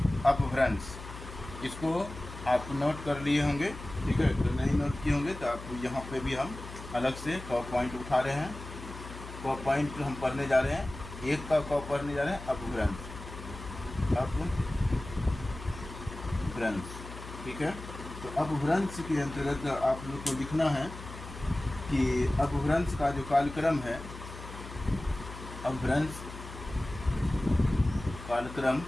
अपभ्रंश, इसको आप नोट कर लिए होंगे। ठीक है, तो नहीं नोट किए होंगे तो आप यहाँ पे भी हम अलग से क पॉइंट उठा रहे हैं। क पॉइंट हम पढ़ने जा रहे हैं, एक का क पढ़ने जा रहे हैं अपभ्रंश। ठीक है, तो अपभ्रंश के अंतर्गत आप लोग को लिखना है कि अपभ्रंश का जो कालक्रम है, अपभ्रंश कालक्रम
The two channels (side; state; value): left; noise; hum, 13 dB below the sound